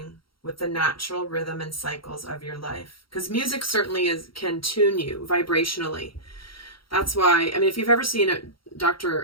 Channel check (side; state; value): right; late; 0.74 ms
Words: with the natural rhythm and cycles of your life. Because music certainly can tune you vibrationally. That's why, I mean, if you've ever seen